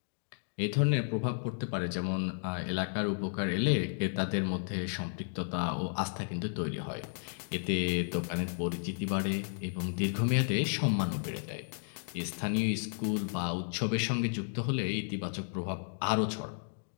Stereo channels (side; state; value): right; silent; digital silence